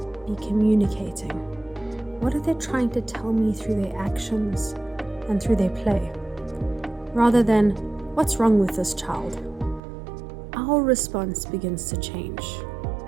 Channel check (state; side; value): drops out; left; at 9.8 s